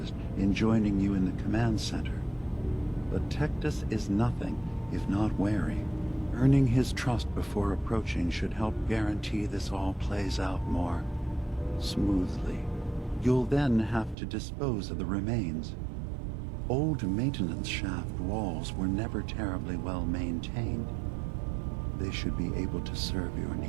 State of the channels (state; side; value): drops out; left; at 14.2 s